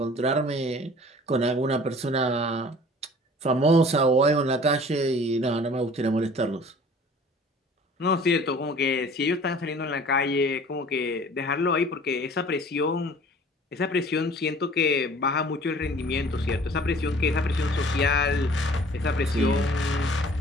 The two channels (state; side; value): normal; both; correlation 0.48